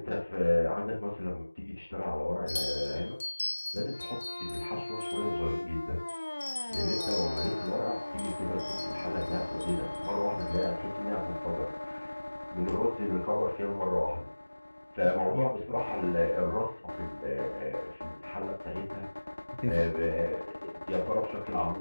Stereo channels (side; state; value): both; inverted; correlation -1.00